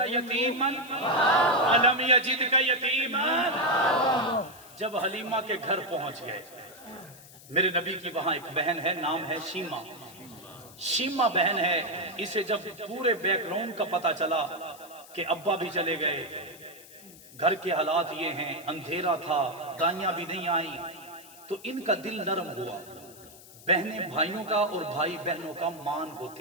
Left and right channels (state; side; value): noise; left; hiss, 20 dB below the sound